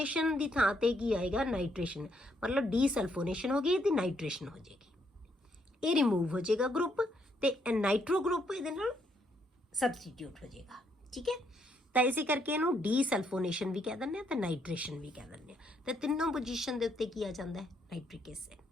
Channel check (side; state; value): both; normal; correlation 0.73